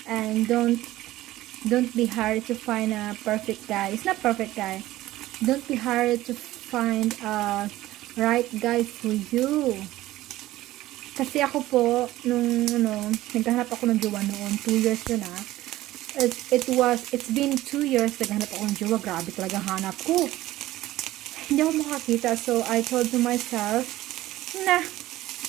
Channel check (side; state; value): left; quieter; 16.0 dB